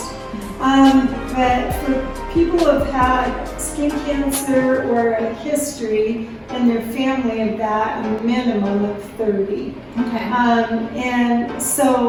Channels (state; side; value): identical; both; correlation 1.00